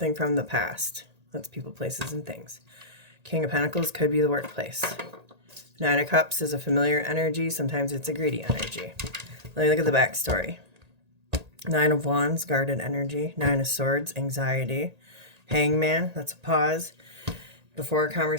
from the past. That's people, places, and things. King of Pentacles could be the workplace. Nine of Cups is a familiar energy. Sometimes it's a greedy energy. Let me look at the backstory. Nine of Wands, guarded energy. Nine of Swords, anxiety. Hangman, that's a pause before a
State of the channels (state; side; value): late; left; 1.8 ms